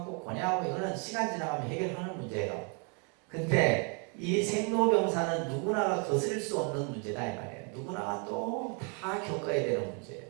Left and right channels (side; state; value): left; quieter; 36.6 dB